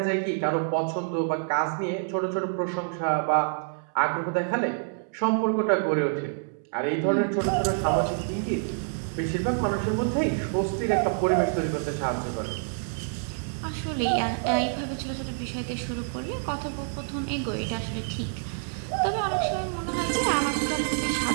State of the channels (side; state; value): left; silent; 60 dB below the other